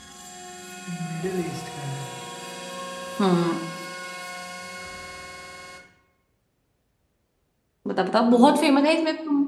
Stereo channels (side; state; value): both; identical; correlation 1.00